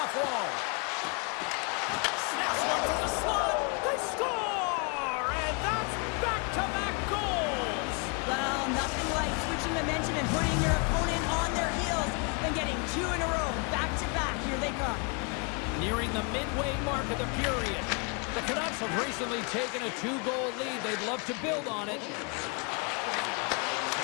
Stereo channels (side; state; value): right; quieter; 33.9 dB